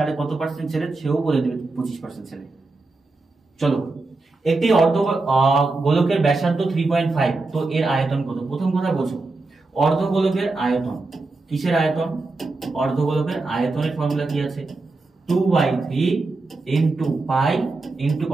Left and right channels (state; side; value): quieter; left; 3.5 dB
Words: কত পার্সেন্ট ছেলে? সেও বলে দেবে 25% ছেলে। চলো, একটি অর্ধ গোলকের ব্যাসার্ধ 3.5, তো এর আয়তন কত? প্রথম কথা বোঝো, অর্ধগোলকের আয়তন। কিসের আয়তন? অর্ধগোলকের আয়তনের ফর্মুলা কি আছে? 2/3 ইনটু পাই ইনটু